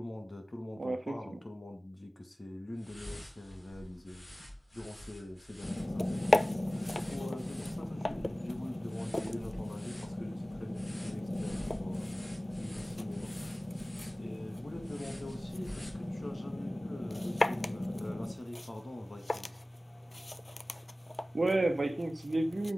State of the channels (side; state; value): both; normal; correlation 0.97